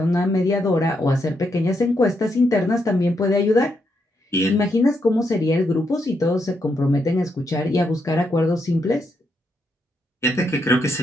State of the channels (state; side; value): normal; both; correlation 0.80